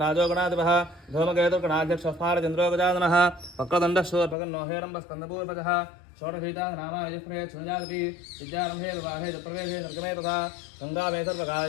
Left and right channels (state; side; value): drops out; right; at 4.4 s